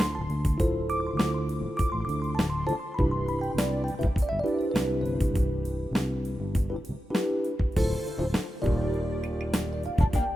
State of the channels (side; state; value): both; normal; correlation 0.91